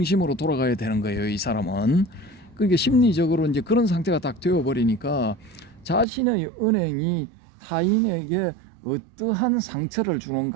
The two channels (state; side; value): drops out; left; at 6.1 s